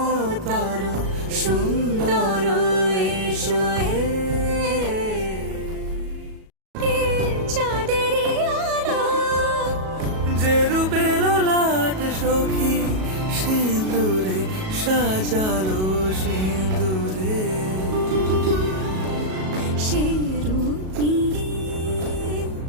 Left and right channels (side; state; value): left; late; 37 ms